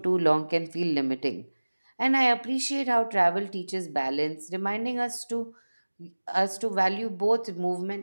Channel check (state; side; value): inverted; both; correlation -1.00